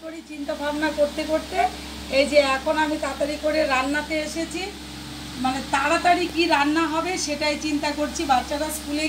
করি চিন্তা ভাবনা করতে করতে এই যে এখন আমি তাড়াতাড়ি করে রান্নাতে এসেছি। মানে তাড়াতাড়ি কি রান্না হবে সেটাই চিন্তা করছি। বাচ্চারা স্কুলে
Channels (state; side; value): identical; both; correlation 1.00